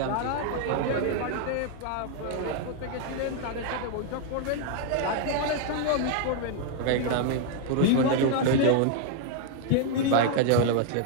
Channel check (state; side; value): different; both; correlation 0.00